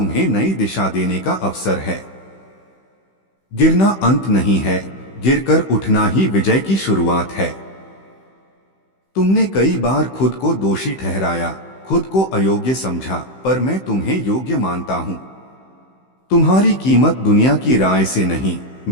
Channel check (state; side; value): late; right; 15 ms